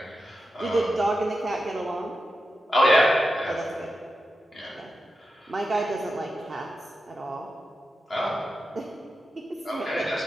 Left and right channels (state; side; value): normal; both; correlation 0.90